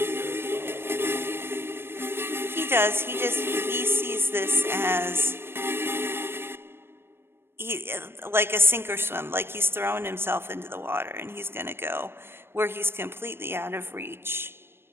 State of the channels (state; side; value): late; left; 0.11 ms